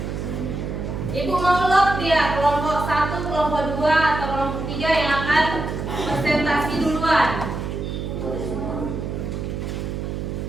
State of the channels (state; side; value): noise; right; hum, 4 dB below the sound